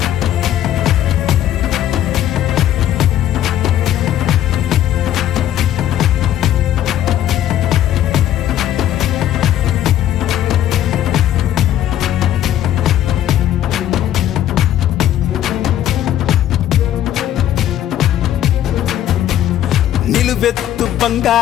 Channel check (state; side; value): quieter; right; 11.8 dB